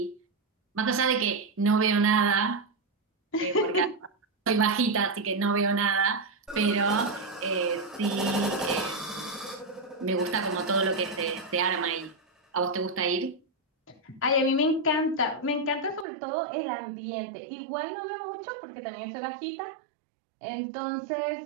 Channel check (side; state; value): left; drops out; at 16.1 s